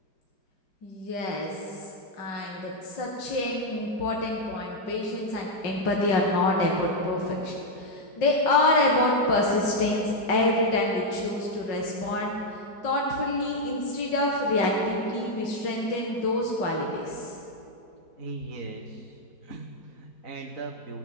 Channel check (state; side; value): late; right; 5.4 ms